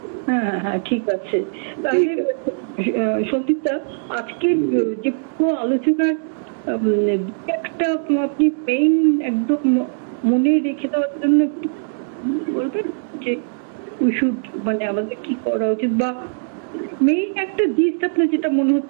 হ্যাঁ ঠিক আছে। তাহলে সন্দীপদা, আজকে যে পুরো আলোচনার একটা আপনি মেইন একদম মনে রেখে দেওয়ার জন্য একটু বলবেন যে মানে আমাদের কি করা উচিত, বা মেইন একটা জিনিস আপনার যেটা মনে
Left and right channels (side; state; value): left; silent; digital silence